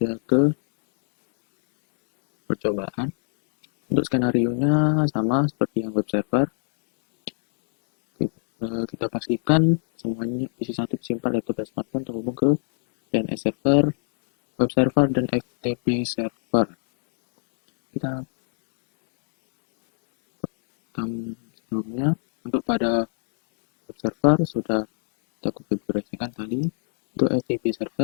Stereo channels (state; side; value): silent; right; 56 dB below the other